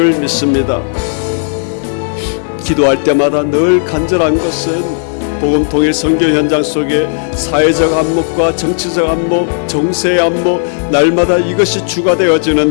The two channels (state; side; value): silent; right; digital silence